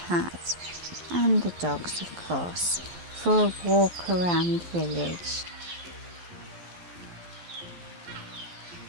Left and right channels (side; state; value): left; late; 12 ms